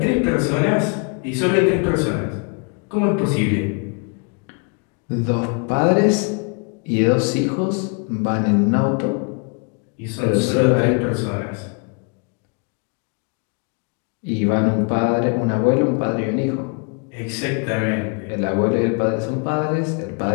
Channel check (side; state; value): right; quieter; 36.4 dB